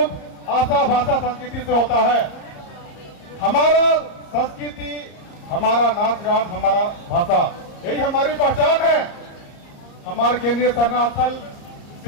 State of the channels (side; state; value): right; late; 34 ms